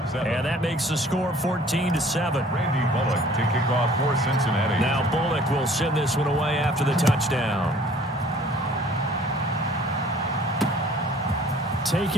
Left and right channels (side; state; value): both; normal; correlation 0.53